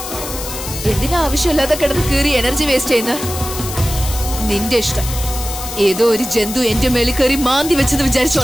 എന്തിനാ ആവശ്യമില്ലാതെ കിടന്ന് കീറി എനർജി വേസ്റ്റ് ചെയ്യുന്ന? നിന്റെ ഇഷ്ടം. ഏതോ ഒരു ജന്തു എന്റെ മേളിൽ കയറി മാന്തി വെച്ചെന്ന്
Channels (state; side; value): noise; left; hiss, 8 dB below the sound